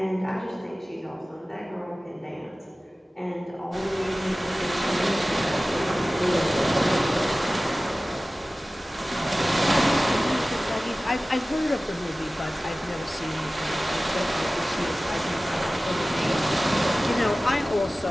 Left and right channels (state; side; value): normal; both; correlation 0.97